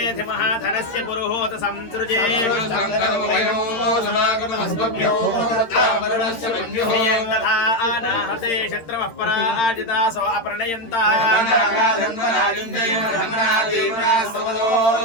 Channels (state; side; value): late; right; 13 ms